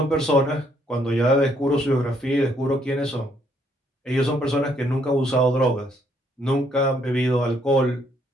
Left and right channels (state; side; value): normal; both; correlation 0.69